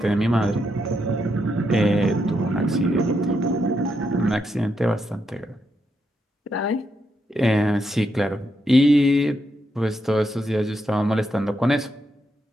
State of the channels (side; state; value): both; normal; correlation 0.81